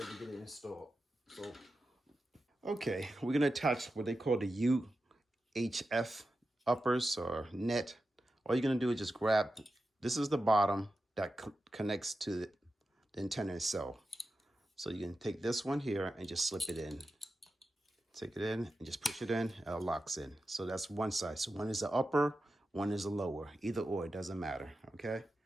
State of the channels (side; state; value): both; normal; correlation 0.91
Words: to get it installed. So, okay, we're gonna attach what they call the UHF uppers or net. All you're gonna do is just grab, this is the bottom that connects to the antenna itself. So you can take this one here and just slip it in. Take it in and just push it in, and it locks in. So that's one side. So one is the upper, one is the lower. Either or, it doesn't matter, okay?